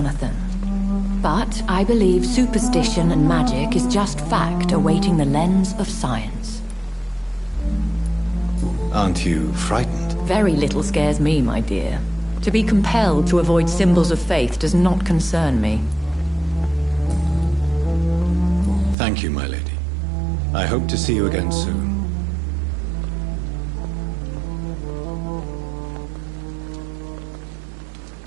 But I believe superstition and magic is just fact awaiting the lens of science. Aren't you frightened? Very little scares me, my dear. To be compelled to avoid symbols of faith does not concern me. Thank you, my lady. I hope to see you again soon.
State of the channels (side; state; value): left; drops out; at 18.9 s